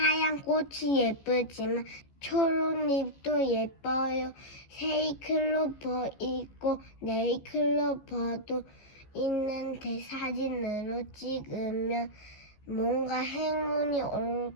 꽃이 예쁘지만 초록잎도 예뻐요. 세이클로버 있고 네이클로버도 있는데 사진으로 찍으면 뭔가 행운이 올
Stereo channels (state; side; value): late; right; 14 ms